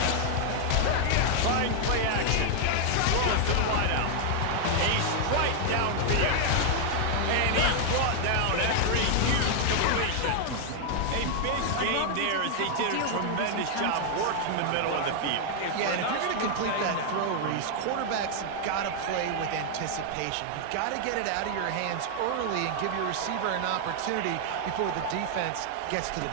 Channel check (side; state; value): both; different; correlation 0.00